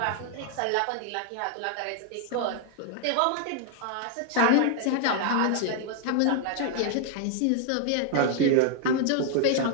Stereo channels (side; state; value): both; different; correlation 0.00